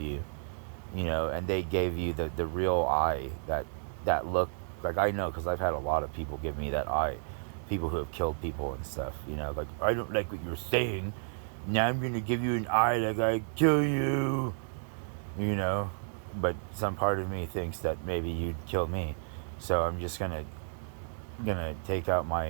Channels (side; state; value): left; silent; digital silence